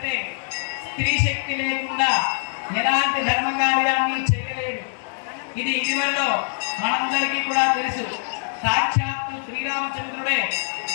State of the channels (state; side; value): silent; right; digital silence